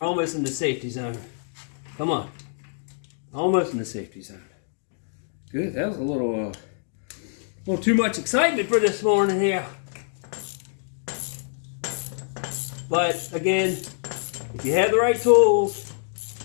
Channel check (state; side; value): silent; right; digital silence